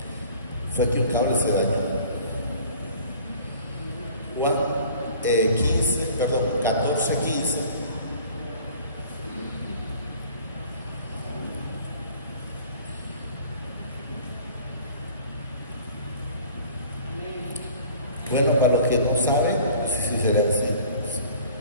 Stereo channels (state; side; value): inverted; both; correlation -0.48